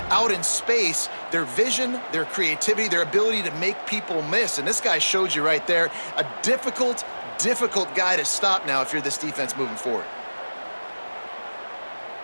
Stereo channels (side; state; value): both; inverted; correlation -1.00